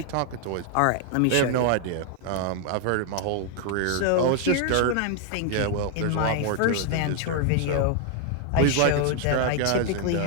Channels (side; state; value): both; different; correlation 0.00